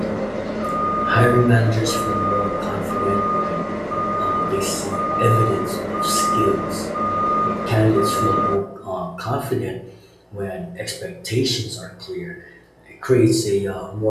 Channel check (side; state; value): both; identical; correlation 1.00